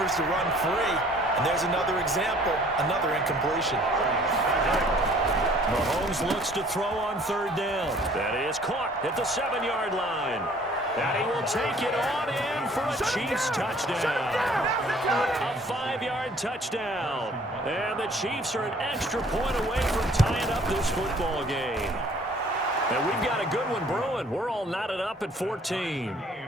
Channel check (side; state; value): both; normal; correlation 0.56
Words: to run free. And there's another example, another incompletion. Mahomes looks to throw on 3rd down. That is caught at the 7-yard line. And he will take it on in for a Chiefs touchdown. A 5-yard touchdown. And the Chiefs are an extra point away from tying up this football game. And we've got a good one brewing. We're all knotted up at 14.